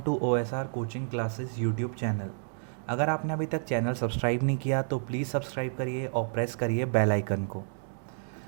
to OSR coaching classes YouTube channel. अगर आपने अभी तक चैनल सब्सक्राइब नहीं किया तो प्लीज़ सब्सक्राइब करिए और प्रेस करिए बेल आइकन को।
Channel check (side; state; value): left; silent; digital silence